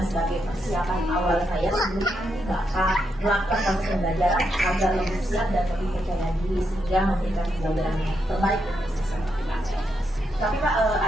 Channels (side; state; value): both; normal; correlation 0.81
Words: sebagai persiapan awal saya sebelum Bapak melakukan proses pembelajaran agar lebih siap dan lebih percaya diri sehingga memberikan pembelajaran yang terbaik untuk siswa. Tapi Pak,